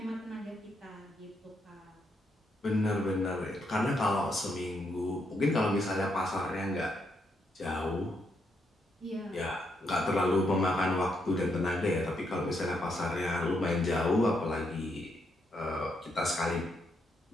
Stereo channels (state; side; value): normal; both; correlation 0.78